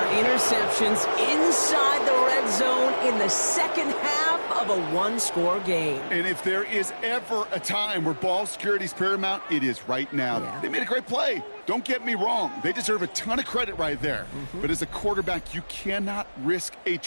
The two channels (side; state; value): both; inverted; correlation -1.00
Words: interceptions inside the red zone in the 2nd half of a 1-score game. And if there is ever a time where ball security is paramount, it is right now. Yeah. They made a great play. Don't get me wrong. They deserve a ton of credit right there. But as a quarterback, you cannot risk a